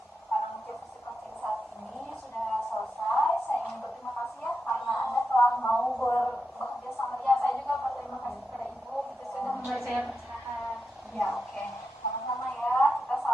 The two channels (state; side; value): normal; both; correlation 0.88